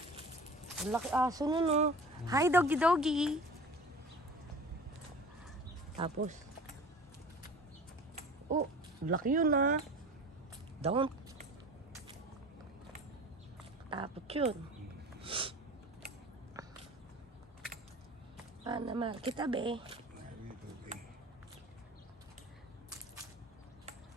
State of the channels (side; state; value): both; normal; correlation 0.40